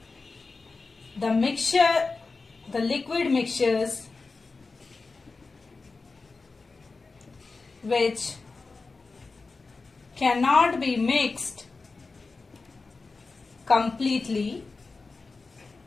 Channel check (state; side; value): quieter; right; 4.0 dB